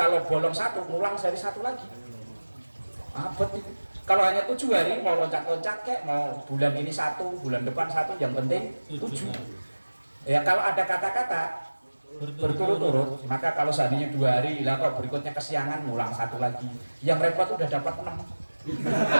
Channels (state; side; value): inverted; both; correlation -1.00